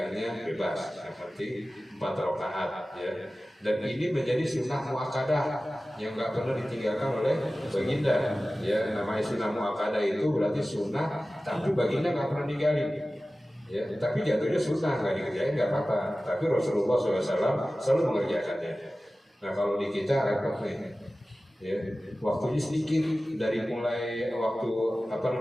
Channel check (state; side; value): normal; both; correlation 0.96